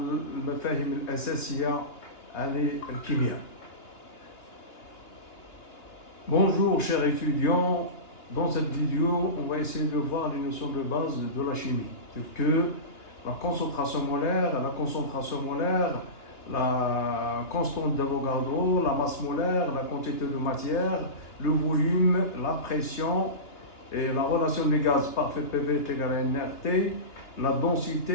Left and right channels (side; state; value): right; late; 2.9 ms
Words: المفاهيم الأساسية عن الكيمياء. Bonjour chers étudiants, dans cette vidéo on va essayer de voir les notions de base de la chimie, telles que la concentration molaire, la constante d'Avogadro, la masse molaire, la quantité de matière, le volume, la pression et la relation des gaz parfait PV est égale à nRT, la